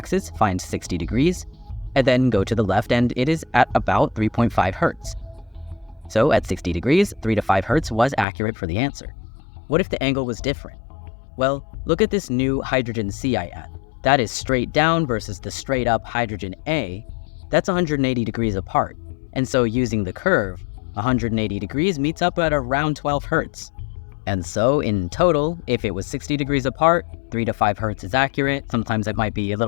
find 60 degrees, and then go to the left, and it is at about 3.5 Hertz. So at 60 degrees, 3 to 5 Hertz was accurate for the answer. What if the angle was different? Well, look at this new hydrogen C I add. That is straight down versus the straight up hydrogen A. That's 180 degrees apart. And so using the curve, 180 degrees meets up at around 12 Hertz. And so in total, if it was 60 degrees apart, 3 to 5 Hertz is accurate. Sometimes it might be a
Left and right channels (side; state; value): right; drops out; at 8.2 s